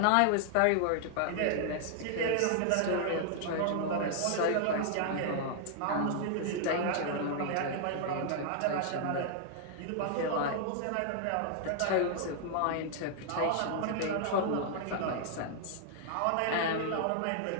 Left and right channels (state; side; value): different; both; correlation -0.01